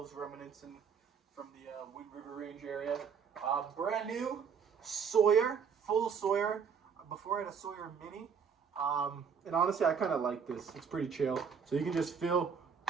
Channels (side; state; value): left; quieter; 6.6 dB